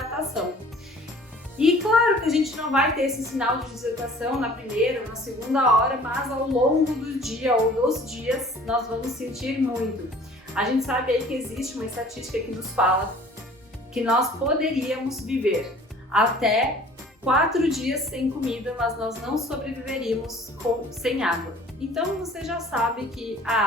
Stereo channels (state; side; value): normal; both; correlation 0.50